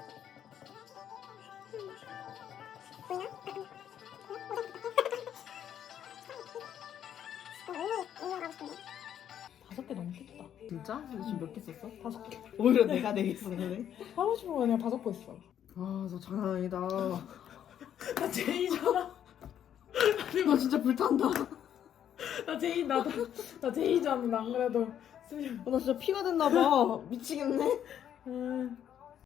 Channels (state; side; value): quieter; right; 9.8 dB